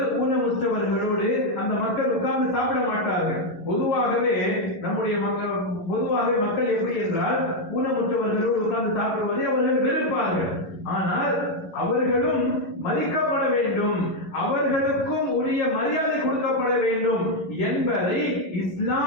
ஊனமுற்றவர்களோடு அந்த மக்கள் உட்கார்ந்து சாப்பிட மாட்டார்கள். பொதுவாகவே மக்கள் எப்படி என்றால், ஊனமுற்றவர்களோடு உட்கார்ந்து சாப்பிடுவதை அவர்கள் வெறுப்பார்கள். ஆனால் அவர்களும் மதிக்கப்பட வேண்டும், அவர்களுக்கும் உரிய மரியாதை கொடுக்கப்பட வேண்டும் என்பதை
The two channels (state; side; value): late; right; 11 ms